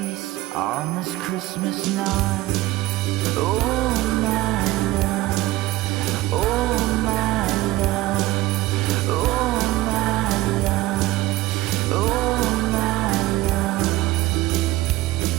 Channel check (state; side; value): quieter; left; 17.7 dB